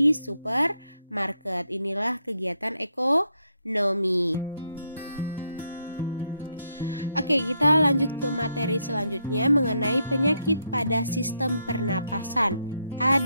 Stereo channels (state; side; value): inverted; both; correlation -0.78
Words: supermarket. Inilah kegiatan ekonomi. Oke, kita lanjut ke materi selanjutnya mengenai penyakit pada sistem pernapasan.